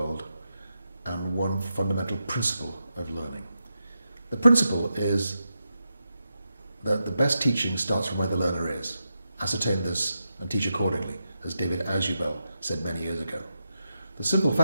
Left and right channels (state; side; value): inverted; both; correlation -0.88